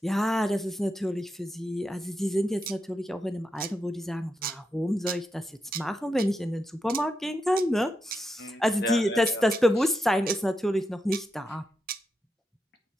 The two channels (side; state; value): both; normal; correlation 0.86